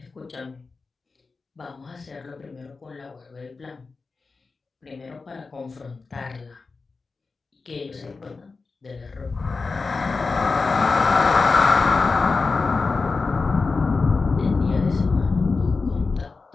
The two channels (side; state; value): right; quieter; 4.2 dB